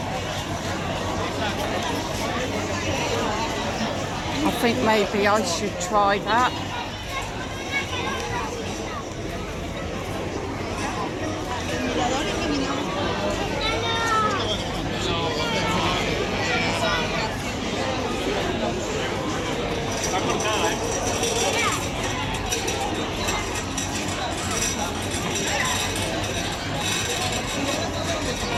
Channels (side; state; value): both; identical; correlation 1.00